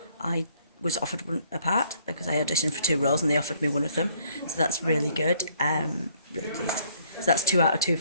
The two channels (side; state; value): both; inverted; correlation -0.63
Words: I was offered a part because I auditioned for 2 roles and they offered me one of them. So that's really good. Really pleased. So that's 2 out of 2